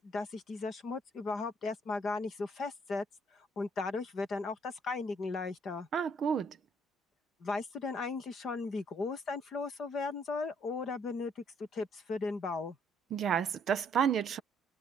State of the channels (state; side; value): normal; both; correlation 0.66